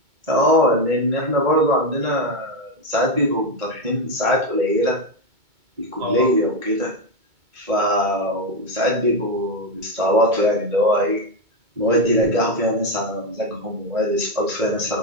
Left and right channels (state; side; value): late; left; 2.2 ms